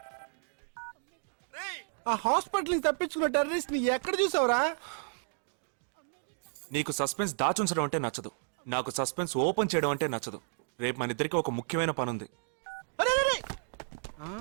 ఆ హాస్పిటల్ తప్పించుకున్న టెర్రరిస్ట్ ని ఎక్కడ చూసావురా? నీకు సస్పెన్స్ దాచుంచడం అంటే నచ్చదు, నాకు సస్పెన్స్ ఓపెన్ చేయడం అంటే నచ్చదు. రేపు మన ఇద్దరికి ఒక ముఖ్యమైన పని ఉంది.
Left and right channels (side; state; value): left; silent; digital silence